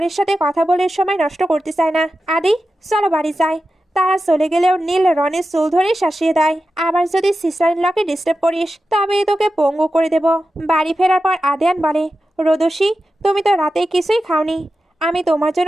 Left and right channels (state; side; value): normal; both; correlation 0.92